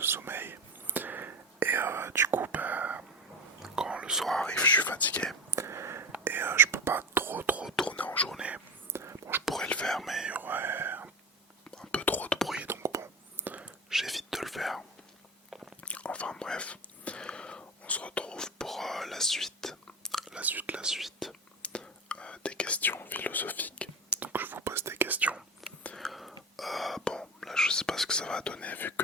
Et du coup, quand le soir arrive, je suis fatigué. Et je peux pas trop tourner en journée. Bon, je pourrais le faire, mais il y aurait un peu trop de bruit, donc bon, j'évite de le faire. Enfin bref, on se retrouve pour la suite des questions philosophiques. Donc je vous pose des questions. Bon, là je sais pas ce que ça va donner, vu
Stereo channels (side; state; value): both; normal; correlation 0.25